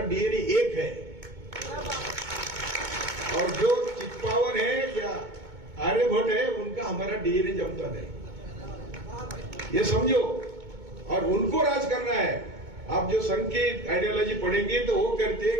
डीएनए एक है. और जो चित्पावन है या आर्यभट्ट है उनका हमारा डीएनए जमता नहीं, ये समझो. और उनको राज करना है. आप जो संघ की आइडियोलॉजी पढ़ेंगे तो वो कहते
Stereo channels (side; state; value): left; late; 2.2 ms